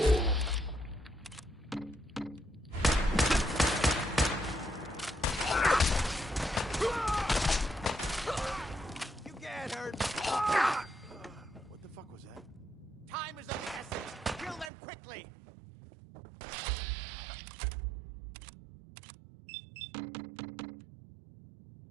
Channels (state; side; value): drops out; left; at 14.7 s